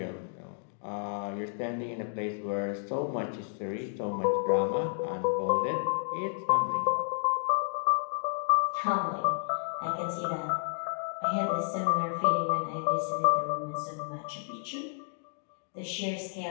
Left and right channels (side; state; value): right; silent; digital silence